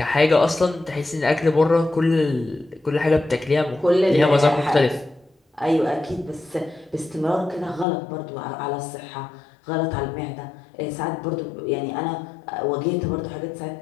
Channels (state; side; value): drops out; right; at 7.9 s